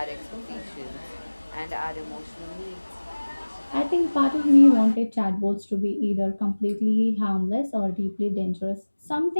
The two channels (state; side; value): inverted; both; correlation -1.00